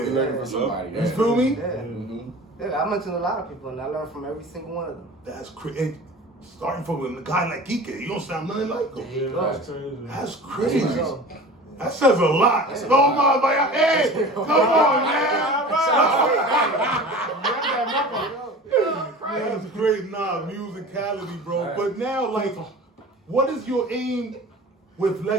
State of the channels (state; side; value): normal; both; correlation 0.39